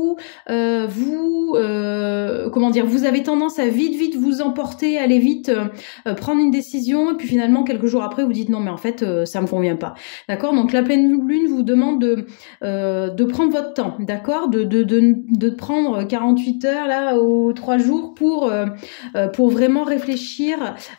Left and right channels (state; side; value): silent; right; digital silence